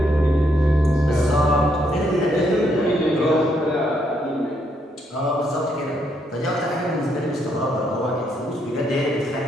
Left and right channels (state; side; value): normal; both; correlation 0.74